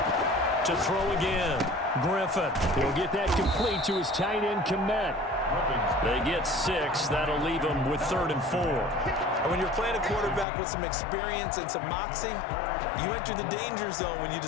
To throw again. Griffin. He'll get that complete to his tight end, Komet. They get 6. That'll leave them with 3rd and 4. And when you're playing a quarterback with some experience and some moxie, you enter the danger zone when you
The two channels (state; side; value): drops out; right; at 10.5 s